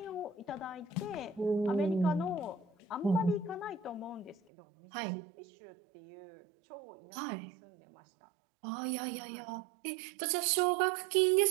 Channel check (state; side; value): drops out; left; at 4.4 s